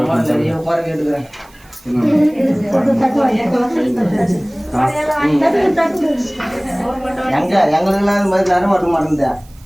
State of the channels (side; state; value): right; noise; hiss, 28 dB below the sound